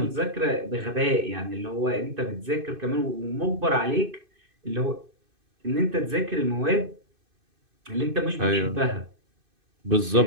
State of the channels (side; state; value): left; late; 2.5 ms